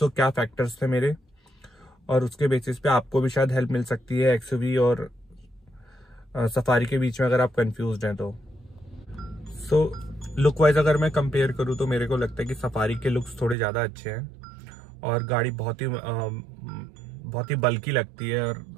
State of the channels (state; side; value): drops out; left; at 13.6 s